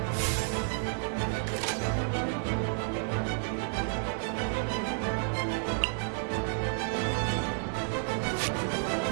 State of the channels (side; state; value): left; silent; digital silence